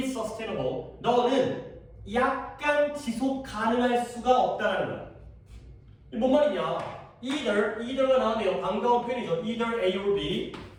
sustainable. 너는 약간 지속 가능할 수가 없다는 거야. 뭔 말이냐? either가 나오네요. 반가운 표현이죠. either A or B.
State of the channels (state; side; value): identical; both; correlation 1.00